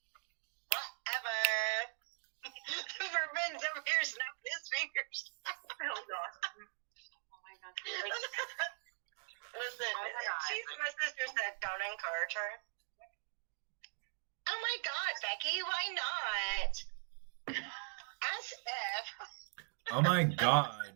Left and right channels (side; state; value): left; silent; 51 dB below the other